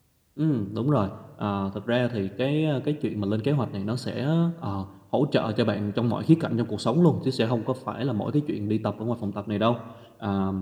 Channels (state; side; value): identical; both; correlation 1.00